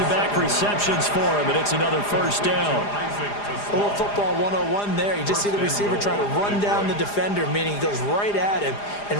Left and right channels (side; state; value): right; late; 4.9 ms